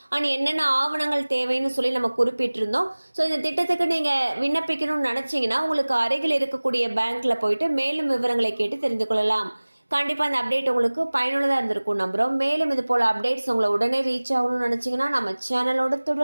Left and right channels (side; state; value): both; inverted; correlation -1.00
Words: அண்ட் என்னென்ன ஆவணங்கள் தேவைன்னு சொல்லி நம்ம குறிப்பிட்டிருந்தோம். ஸோ இந்த திட்டத்துக்கு நீங்கள் விண்ணப்பிக்கணும்னு நினச்சிங்கன்னா உங்களுக்கு அருகில் இருக்கக்கூடிய பேங்க்கில் போயிட்டு மேலும் விவரங்களை கேட்டு தெரிந்து கொள்ளலாம். கண்டிப்பாக அந்த அப்டேட் உங்களுக்கு பயனுள்ளதாக இருந்திருக்கும் நம்புகிறோம். மேலும் இது போல் அப்டேட்ஸ் உங்களை உடனே ரீச் ஆகணும்னு நினச்சிங்கன்னா நம்ம சேனலோட